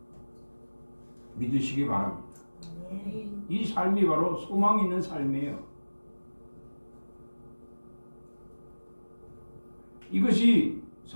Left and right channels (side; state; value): both; inverted; correlation -1.00